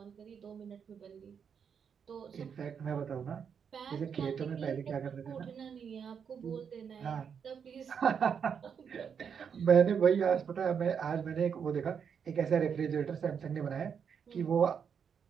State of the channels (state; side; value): quieter; left; 7.1 dB